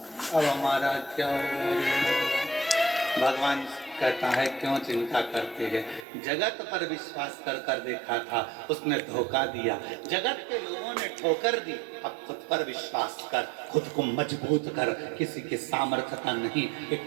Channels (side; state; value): left; drops out; at 6.1 s